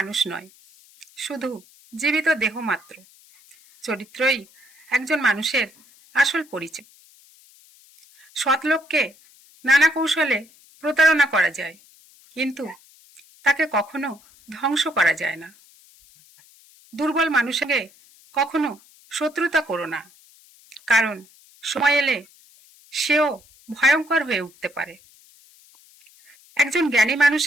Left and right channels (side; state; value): left; noise; hiss, 27 dB below the sound